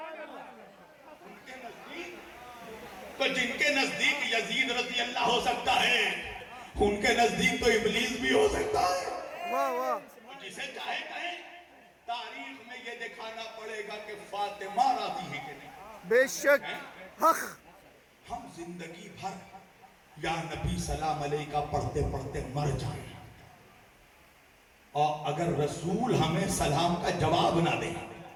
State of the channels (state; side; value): identical; both; correlation 1.00